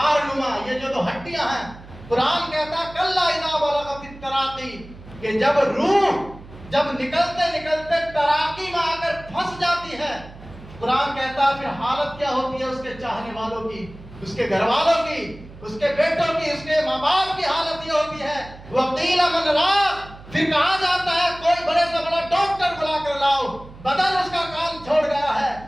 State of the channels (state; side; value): noise; right; hum, 18 dB below the sound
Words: نما، یہ جو دو ہڈیاں ہیں، قرآن کہتا ہے کلا اذا بلغت التراقی، کہ جب روح جب نکلتے نکلتے تراقی میں آ کر پھنس جاتی ہے، قرآن کہتا ہے پھر حالت کیا ہوتی ہے اس کے چاہنے والوں کی، اس کے گھر والوں کی، اس کے بیٹوں کی، اس کے ماں باپ کی حالت یہ ہوتی ہے وَقِيلَ مَنْ رَاقٍ، پھر کہا جاتا ہے کوئی بڑے سے بڑا ڈاکٹر بلا کر لاؤ، بدن اس کا کام چھوڑ گیا ہے،